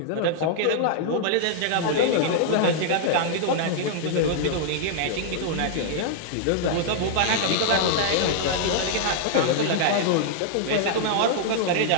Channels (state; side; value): different; both; correlation -0.01